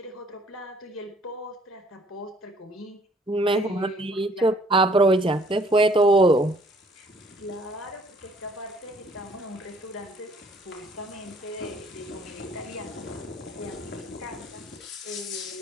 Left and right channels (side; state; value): both; normal; correlation 0.59